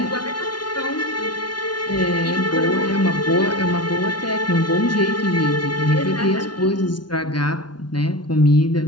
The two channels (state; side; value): late; right; 0.70 ms